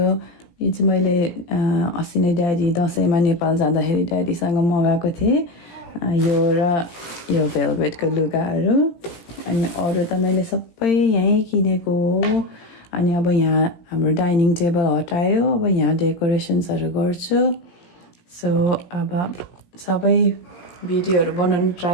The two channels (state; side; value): late; right; 17 ms